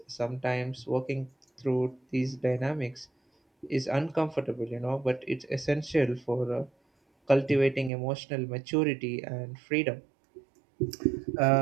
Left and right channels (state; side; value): drops out; left; at 7.9 s